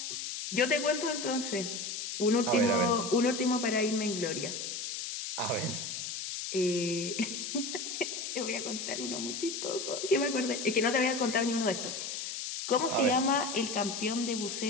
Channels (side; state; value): left; noise; hiss, 5 dB below the sound